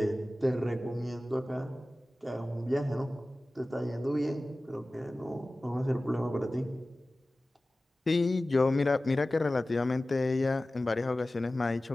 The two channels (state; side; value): normal; both; correlation 0.97